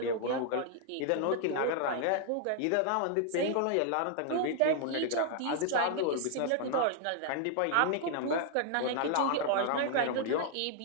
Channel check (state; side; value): different; both; correlation 0.00